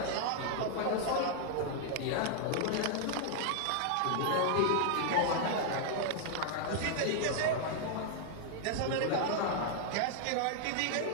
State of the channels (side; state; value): both; different; correlation -0.01